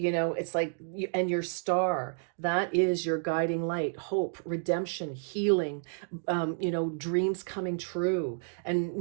like and your star, that is your guiding light, hope, redemption, healing, dreams coming true. And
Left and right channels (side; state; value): left; silent; digital silence